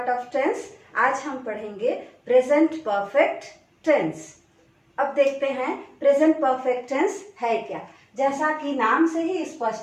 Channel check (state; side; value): identical; both; correlation 1.00